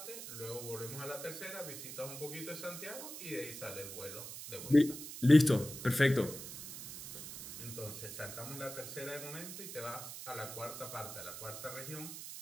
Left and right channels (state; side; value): noise; right; hiss, 9 dB below the sound